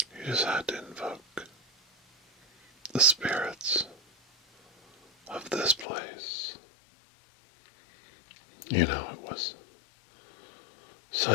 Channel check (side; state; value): right; drops out; at 5.9 s